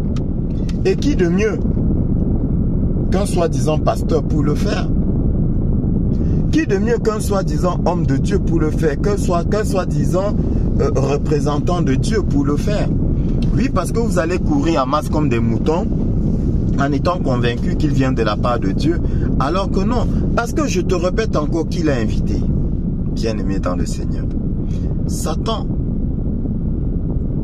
Et qui de mieux qu'un soi-disant pasteur pour le faire? Qui de mieux qu'un soi-disant homme de Dieu pour le faire? Qu'un soi-disant représentant de Dieu pour le faire? Oui, parce que vous allez courir en masse comme des moutons en étant convaincu qu'il vient de la part de Dieu, alors que non. Parce que je te répète encore qui l'a invité. Bien-aimé dans le Seigneur, Satan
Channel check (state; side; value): identical; both; correlation 1.00